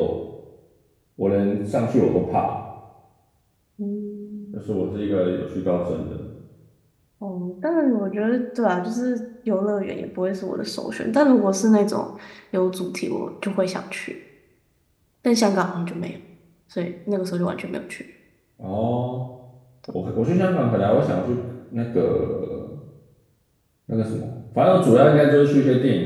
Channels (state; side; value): identical; both; correlation 1.00